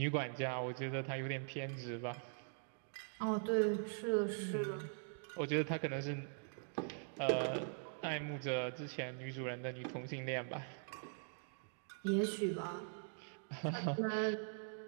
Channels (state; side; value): silent; left; digital silence